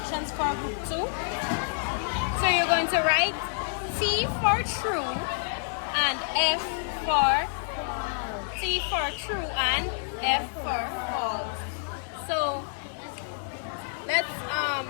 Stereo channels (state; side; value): silent; right; digital silence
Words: for group 2. So you're going to write T for true and F for true and F for false. So